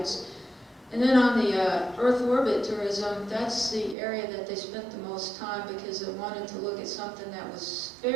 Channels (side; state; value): left; drops out; at 4.0 s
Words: And then on the Earth orbit tourism, that's the area that they spent the most time because they wanted to look at something that was